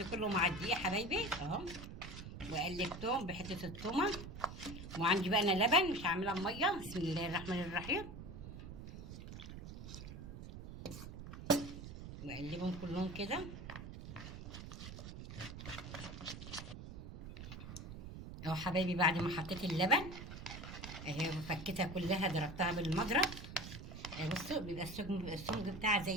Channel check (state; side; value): noise; right; rumble, 10 dB below the sound